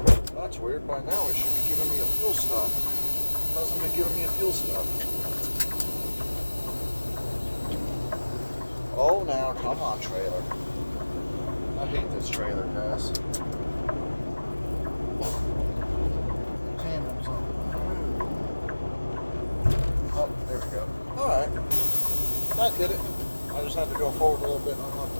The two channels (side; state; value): both; inverted; correlation -1.00